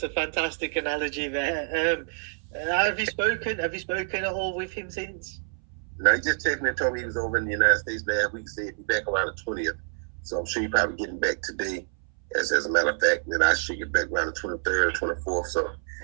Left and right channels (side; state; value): left; silent; 60 dB below the other